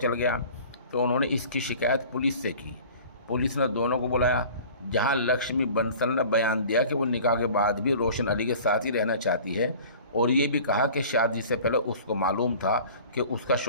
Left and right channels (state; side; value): inverted; both; correlation -0.44